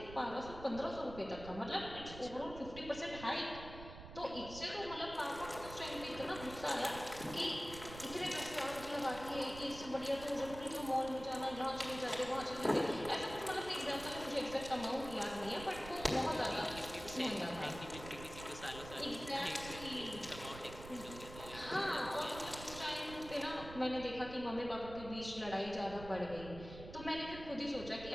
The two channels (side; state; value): right; noise; rumble, 12 dB below the sound